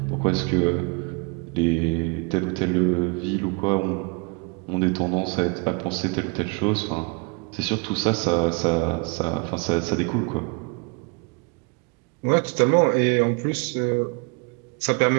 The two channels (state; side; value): quieter; left; 31.7 dB